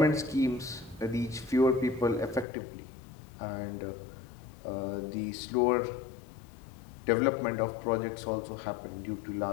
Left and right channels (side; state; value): right; drops out; at 2.5 s